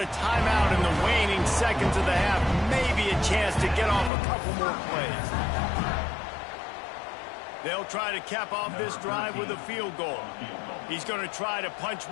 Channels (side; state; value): right; drops out; at 4.1 s